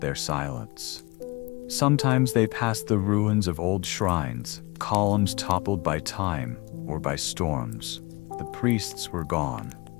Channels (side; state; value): right; quieter; 25.0 dB